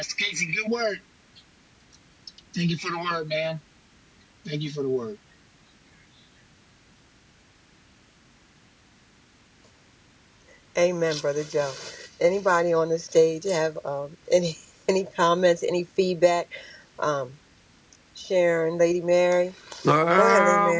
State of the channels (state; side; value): identical; both; correlation 1.00